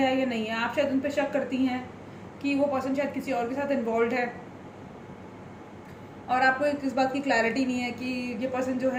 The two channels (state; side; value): identical; both; correlation 1.00